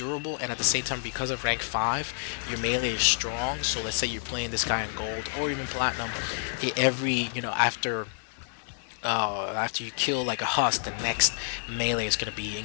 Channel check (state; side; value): silent; right; digital silence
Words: and at the same time, because of rank 5, your melee is strong. So let's say you're playing this guy in gold or even platinum, after you kill like a husk, the next melee is going to be